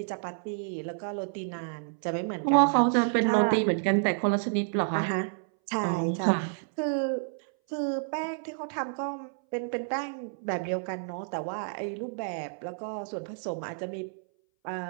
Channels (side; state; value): left; silent; 58 dB below the other